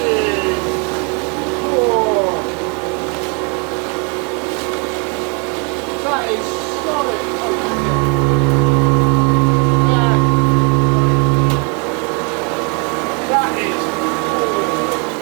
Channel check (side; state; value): left; quieter; 35.2 dB